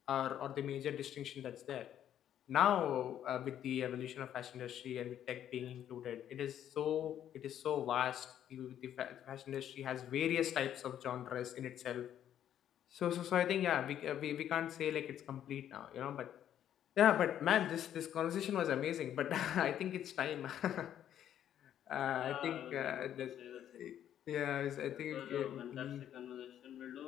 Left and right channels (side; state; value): right; quieter; 10.5 dB